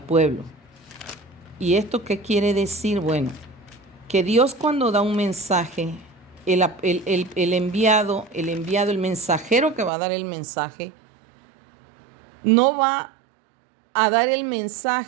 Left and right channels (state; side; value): drops out; left; at 9.9 s